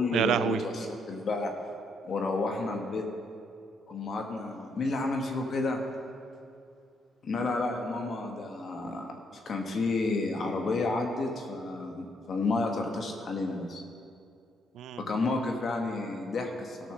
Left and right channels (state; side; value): normal; both; correlation 0.73